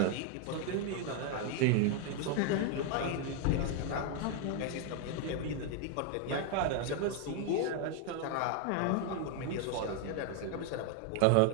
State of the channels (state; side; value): different; both; correlation 0.01